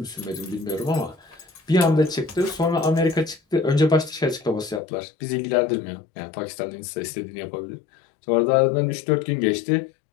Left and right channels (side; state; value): right; drops out; at 4.8 s